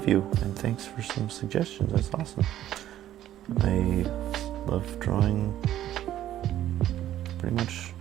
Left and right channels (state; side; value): quieter; left; 12.4 dB